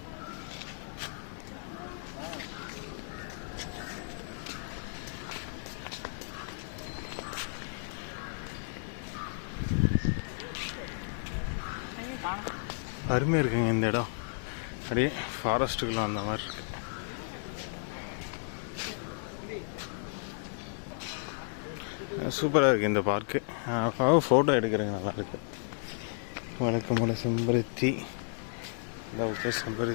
அருமையாக இருக்குங்க இந்த இடம். அப்படியே ஃபாரஸ்ட்டுக்குள்ள அந்த மாதிரி இருக்கு. சூப்பராக இருக்குது இந்த பார்க்கு. ஃபோட்டோ எடுக்கிறேங்க நல்லா இருக்கு. வழக்கமான செம்பருத்தி, ஓகே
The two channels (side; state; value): right; silent; digital silence